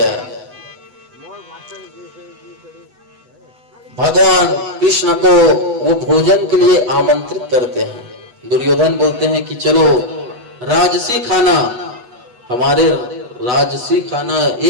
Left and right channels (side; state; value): left; late; 8.1 ms